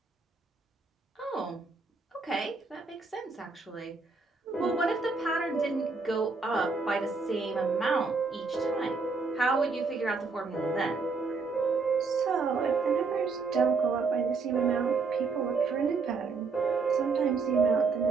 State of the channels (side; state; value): left; quieter; 4.4 dB